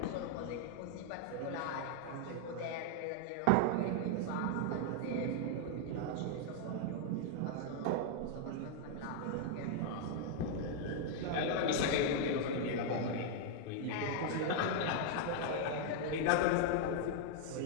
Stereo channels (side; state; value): both; different; correlation 0.00